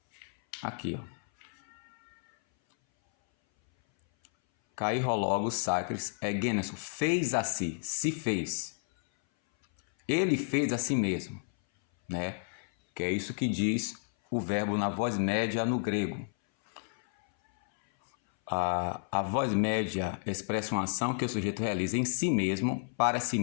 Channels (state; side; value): silent; right; 57 dB below the other